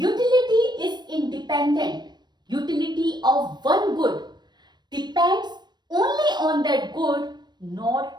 is independent. Utility of one good depends only on that good, not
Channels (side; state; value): left; late; 0.21 ms